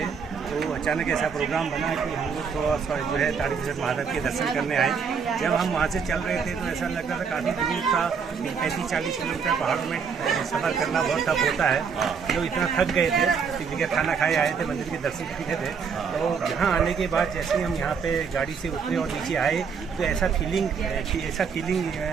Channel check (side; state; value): left; quieter; 6.1 dB